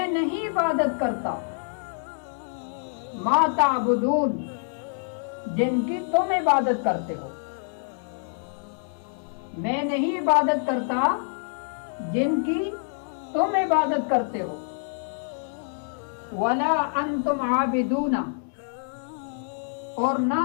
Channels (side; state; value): right; silent; digital silence